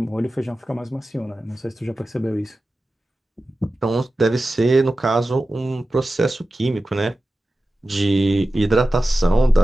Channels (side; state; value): both; normal; correlation 0.94